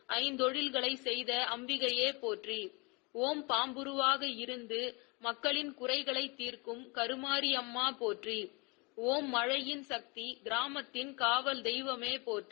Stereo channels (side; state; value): right; quieter; 29.5 dB